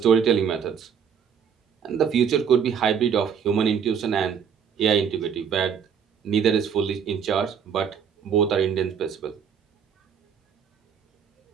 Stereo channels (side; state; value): left; quieter; 7.3 dB